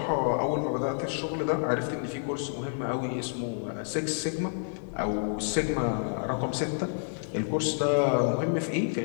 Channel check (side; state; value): right; silent; digital silence